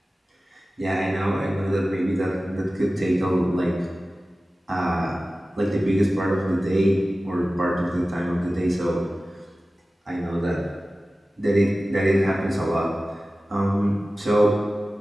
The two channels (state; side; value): normal; both; correlation 0.96